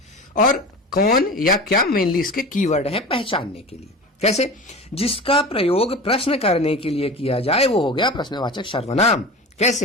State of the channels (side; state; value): both; normal; correlation 0.32